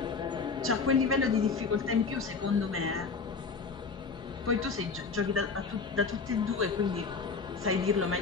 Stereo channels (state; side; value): quieter; right; 4.9 dB